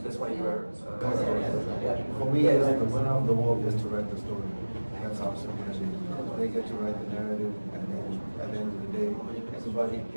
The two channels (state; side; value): inverted; both; correlation -1.00